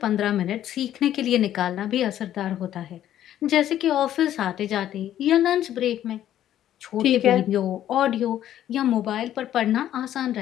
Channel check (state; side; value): quieter; right; 11.7 dB